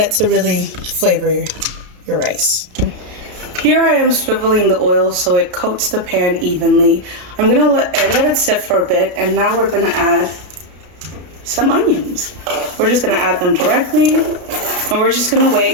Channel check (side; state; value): left; late; 33 ms